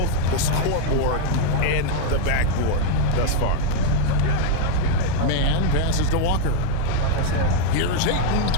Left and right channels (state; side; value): different; both; correlation 0.00